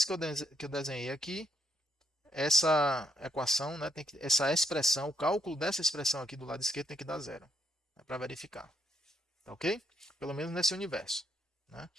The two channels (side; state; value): both; normal; correlation 0.74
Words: que eu desenhei aqui, essa equação, né, essa expressão, o cálculo dessa expressão aqui do lado esquerdo tem que dar zero, né, para verificar. Tá ok? Pelo menos nesse universo. Né?